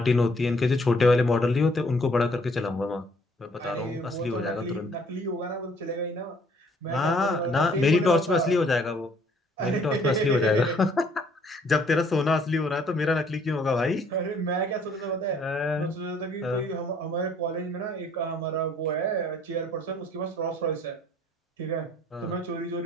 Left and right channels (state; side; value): normal; both; correlation 0.61